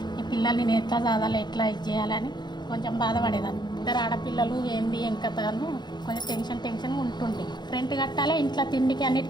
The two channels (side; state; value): right; late; 0.21 ms